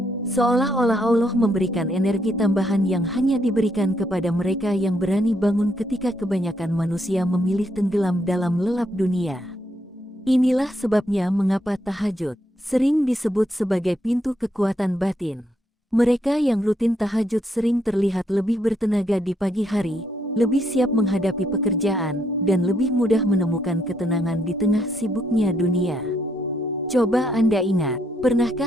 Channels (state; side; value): normal; both; correlation 0.75